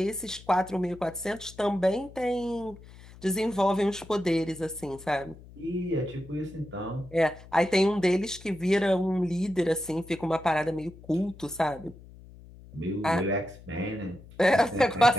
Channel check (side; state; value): left; noise; hum, 20 dB below the sound